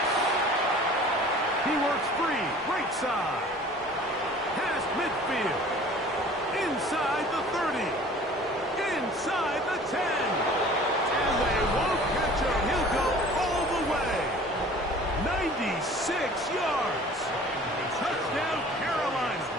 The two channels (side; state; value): both; normal; correlation 0.47